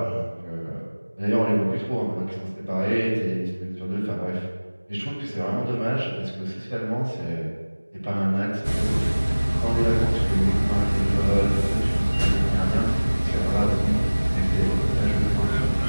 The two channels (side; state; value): both; inverted; correlation -1.00